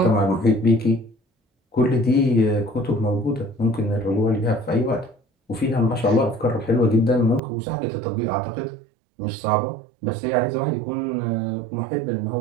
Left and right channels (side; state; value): left; drops out; at 7.4 s